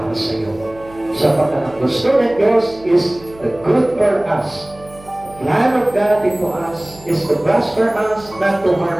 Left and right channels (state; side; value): noise; right; hum, 22 dB below the sound